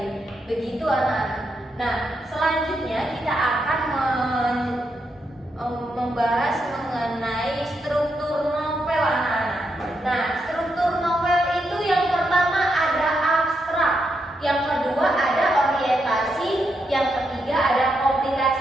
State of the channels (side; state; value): both; normal; correlation 0.82